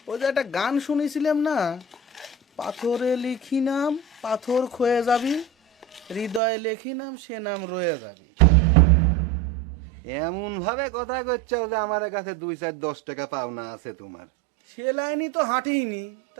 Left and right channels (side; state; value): left; drops out; at 6.4 s